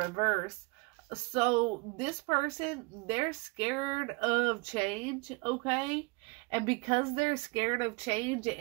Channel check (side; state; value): left; quieter; 27.2 dB